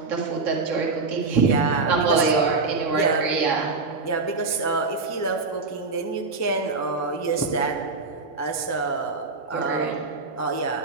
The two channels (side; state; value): left; quieter; 4.0 dB